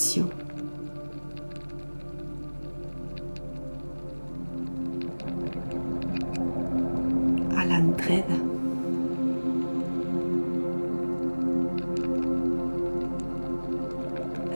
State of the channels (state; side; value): inverted; both; correlation -1.00